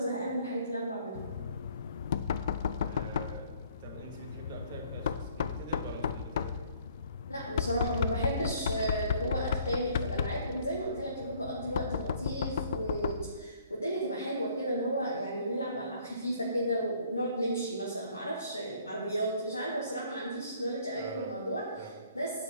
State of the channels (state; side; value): inverted; both; correlation -0.60